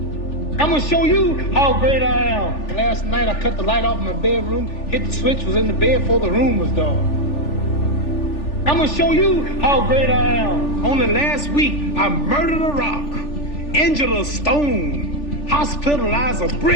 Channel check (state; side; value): late; right; 3.4 ms